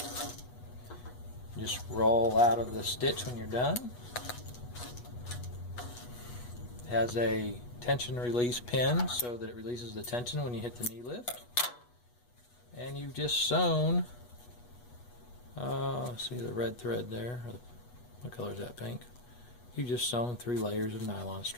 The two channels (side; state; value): right; late; 8.2 ms